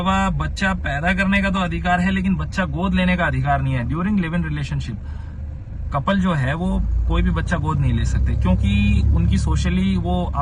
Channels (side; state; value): both; identical; correlation 1.00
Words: बच्चा पैदा करने का तो अधिकार है, लेकिन बच्चा गोद लेने का अधिकार नहीं है। During live in relationship couple जो है वो कोई भी बच्चा गोद नहीं ले सकते, क्योंकि उनकी सोशली वो